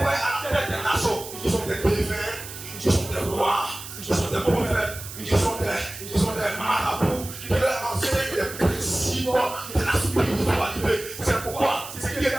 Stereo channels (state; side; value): noise; right; hiss, 12 dB below the sound